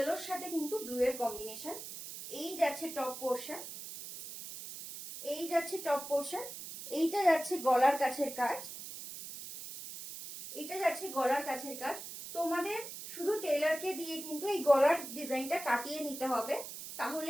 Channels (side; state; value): right; noise; hiss, 10 dB below the sound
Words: সাথে কিন্তু ব্লু এর কম্বিনেশন। এই যাচ্ছে টপ পোর্শন, এই যাচ্ছে টপ পোর্শন। এইটা যাচ্ছে গলার কাছের কাজ, এটা যাচ্ছে গলার কাছের কাজ। তোমাদের শুধু টেলারকে দিয়ে কিন্তু এই গলার ডিজাইনটা কাটিয়ে নিতে হবে,